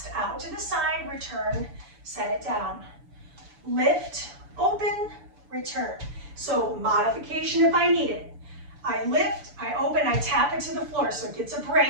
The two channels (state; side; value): late; left; 7.0 ms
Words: Out to the side, return, set it down. Lift, open, return. So modification if I need it. I lift, I open, I tap it to the floor so it gets a